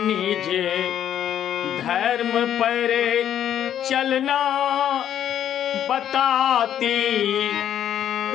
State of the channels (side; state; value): right; quieter; 10.2 dB